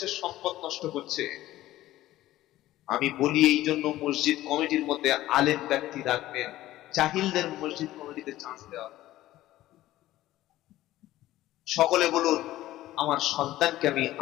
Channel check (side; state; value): right; quieter; 15.3 dB